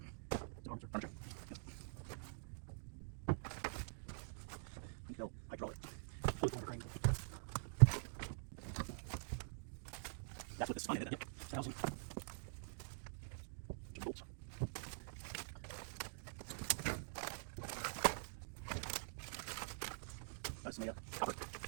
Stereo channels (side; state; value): left; silent; digital silence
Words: Furniture. No, hydraulic. Fluid motor crane. That's what this is. Yep. Housing. This is made of copper.